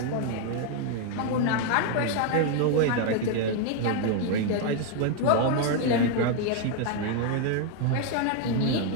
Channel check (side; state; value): both; different; correlation 0.01